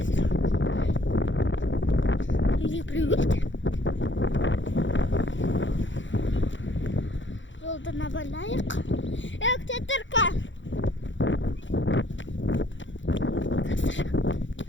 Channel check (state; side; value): late; right; 0.55 ms